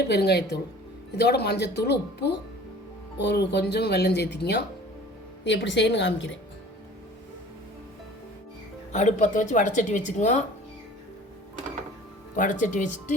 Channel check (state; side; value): normal; both; correlation 0.46